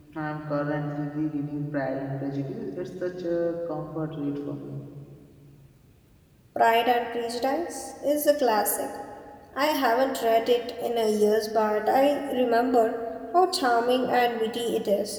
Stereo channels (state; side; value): identical; both; correlation 1.00